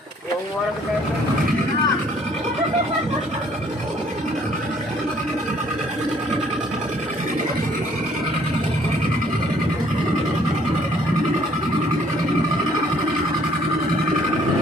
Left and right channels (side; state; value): both; normal; correlation 0.62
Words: Uang muara ke Tepeng.